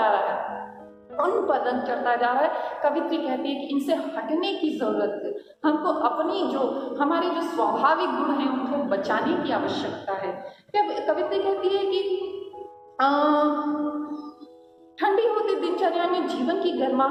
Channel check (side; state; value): both; identical; correlation 1.00